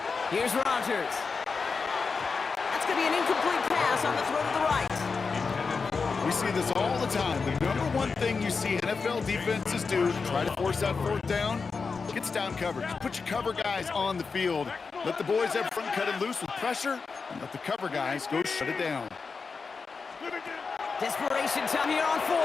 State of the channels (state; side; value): quieter; right; 4.8 dB